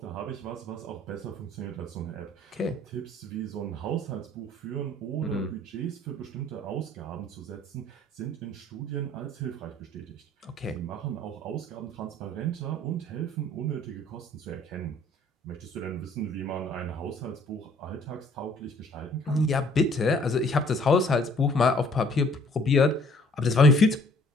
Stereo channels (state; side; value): normal; both; correlation 0.57